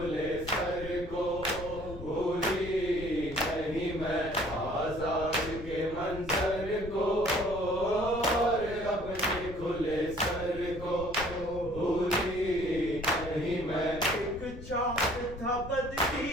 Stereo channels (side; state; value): left; noise; rumble, 12 dB below the sound